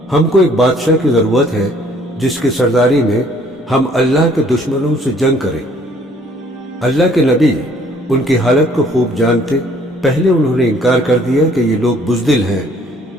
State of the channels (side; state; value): both; normal; correlation 0.60